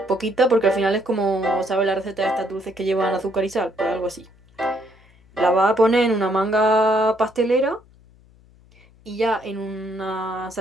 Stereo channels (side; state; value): left; noise; hum, 28 dB below the sound